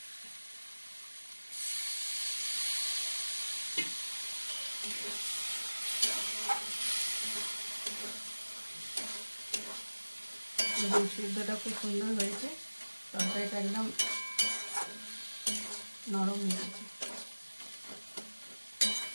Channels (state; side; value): inverted; both; correlation -1.00